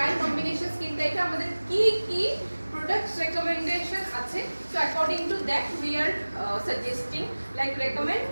combination skin টাইপে আমাদের কি কি products recommendation আছে? So according to that we are suggesting like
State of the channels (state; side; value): inverted; both; correlation -1.00